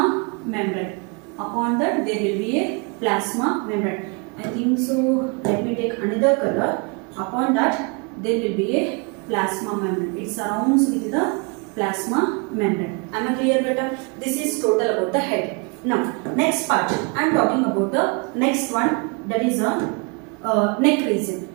membrane. Upon that there will be a plasma membrane. I think so. Let me take another color. Upon that there will be a plasma membrane. It surrounds with the plasma membrane. Am I clear, beta? This is total about the head. Now, next part, I am talking about the next one, that is a neck region.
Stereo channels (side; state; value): left; quieter; 33.3 dB